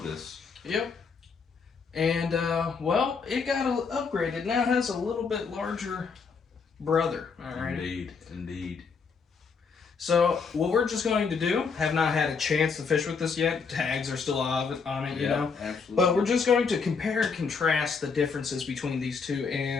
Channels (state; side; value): quieter; right; 5.3 dB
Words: Yep. And, well, it got upgraded. It now has a little bit larger brother. All right. Indeed. Indeed. So, what we're just going to do, have not had a chance to fish with this yet. Tags are still on it, you know. Absolutely. But we're just going to compare and contrast the differences between these two